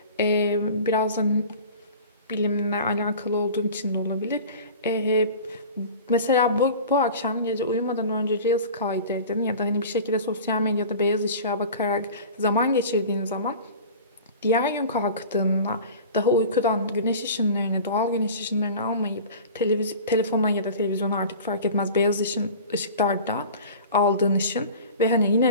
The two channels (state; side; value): inverted; both; correlation -0.39